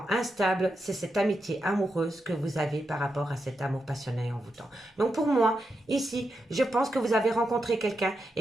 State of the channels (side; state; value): both; normal; correlation 0.86